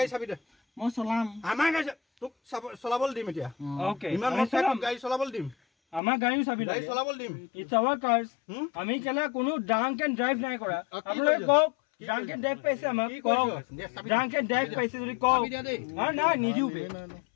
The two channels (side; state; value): right; drops out; at 6.0 s